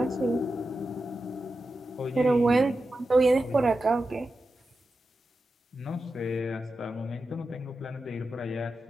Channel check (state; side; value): normal; both; correlation 0.91